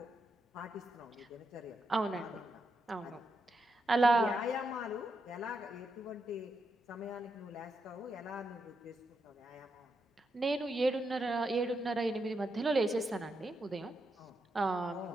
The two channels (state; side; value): normal; both; correlation 0.83